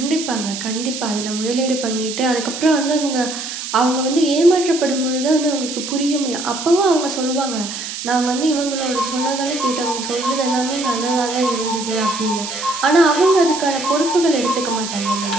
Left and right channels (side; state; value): right; noise; hiss, 7 dB below the sound